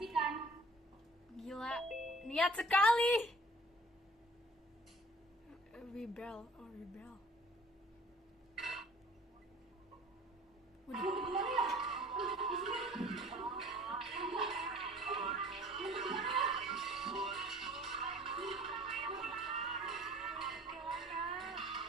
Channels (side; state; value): both; normal; correlation 0.51